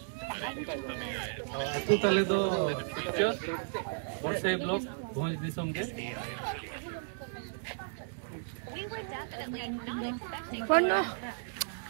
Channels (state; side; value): silent; left; digital silence